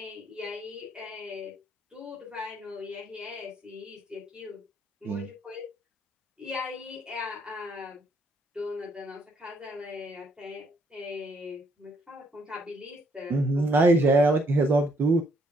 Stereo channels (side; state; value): both; normal; correlation 0.70